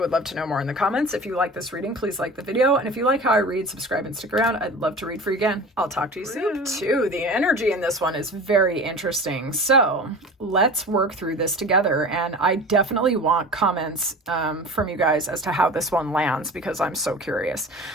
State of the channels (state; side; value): normal; both; correlation 0.36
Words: love to know more in the comments. If you like this reading, please like the video. And if you like how I read, subscribe and stick around. I'd love to read for you again. I'll talk to you soon. Too. The energy in this one is very interesting. So let's work through this together. And I definitely want comments from you guys as to how this one lands, because I'm so curious.